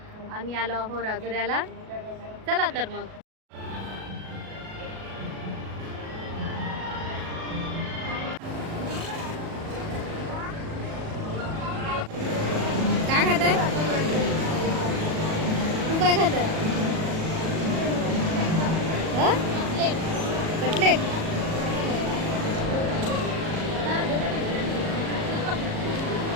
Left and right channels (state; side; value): late; left; 37 ms